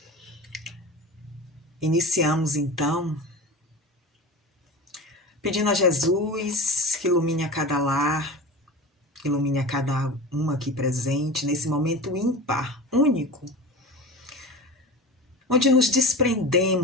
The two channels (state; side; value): normal; both; correlation 0.31